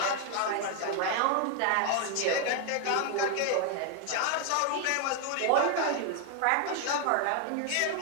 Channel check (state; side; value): different; both; correlation 0.01